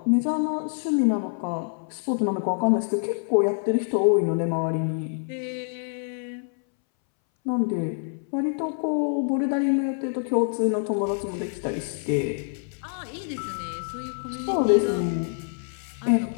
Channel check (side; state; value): right; silent; 61 dB below the other